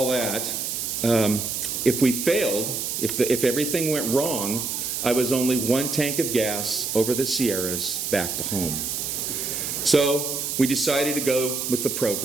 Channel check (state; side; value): noise; right; hiss, 3 dB below the sound